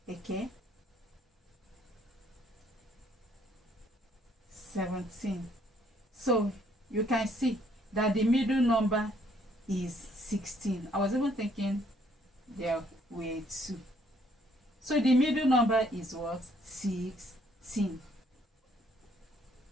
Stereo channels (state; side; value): normal; both; correlation 0.65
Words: Okay, 17. So you can see that the middle number is 16. I was even thinking there were 2. So the middle number is what? 16.